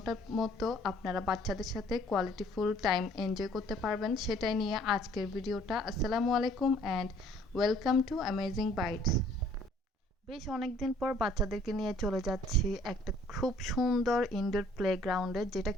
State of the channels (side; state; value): both; normal; correlation 0.58